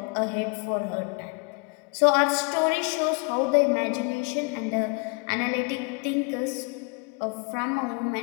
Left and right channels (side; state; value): right; quieter; 33.1 dB